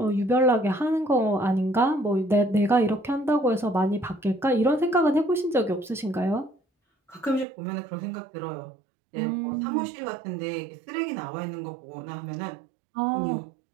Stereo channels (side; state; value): left; drops out; at 7.5 s